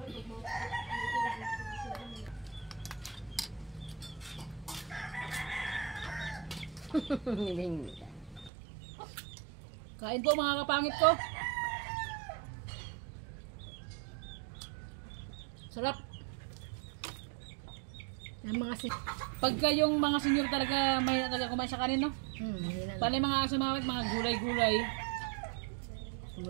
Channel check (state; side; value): drops out; left; at 8.5 s